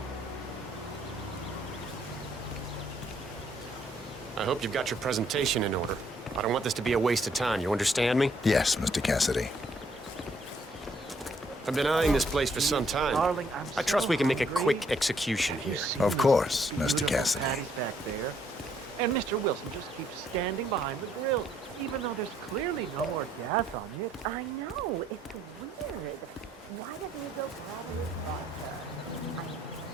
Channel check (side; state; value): both; normal; correlation 0.68